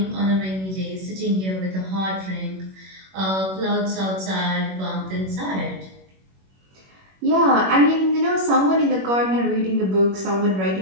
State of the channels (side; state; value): left; late; 21 ms